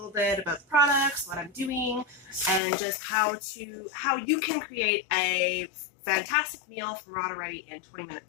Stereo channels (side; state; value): right; drops out; at 2.6 s